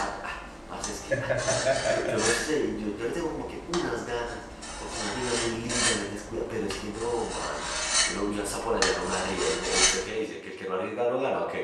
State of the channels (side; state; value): both; identical; correlation 1.00